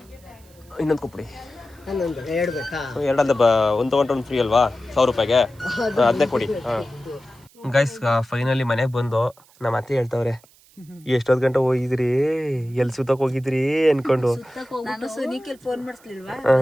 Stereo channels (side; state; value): right; noise; hiss, 29 dB below the sound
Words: ಇನ್ನೊಂದು ಕೊಟ್ಬಿಡಿ. 2 ಅಂತ 1 ತೊಗೊಂಡ್ರೆ 1 ಫ್ರೀ ಅಲ್ವಾ 1,000 ರೂಪಾಯಿಗೆ? ಅದನ್ನೇ ಕೊಡಿ. ಗೈಸ್ ಫೈನಲಿ ಮನೆಗೆ ಬಂದು ನಮ್ಮ ಅತ್ತೆ ಹೇಳ್ತವ್ರೆ, ಎಷ್ಟೊತ್ತು ಗಂಟೆ ಹೋಗಿದ್ರಿ, ಎಲ್ಲಿ ಸುತ್ತಕ್ಕೆ ಹೋಗಿದ್ರಿ ಅನ್ಕೊಂಡು.